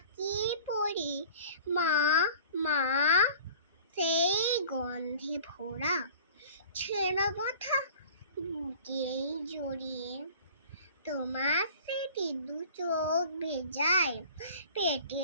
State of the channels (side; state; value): both; inverted; correlation -0.45